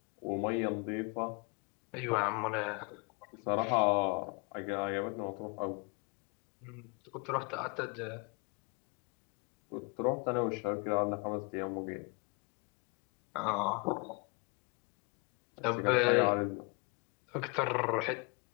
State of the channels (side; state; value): right; quieter; 32.1 dB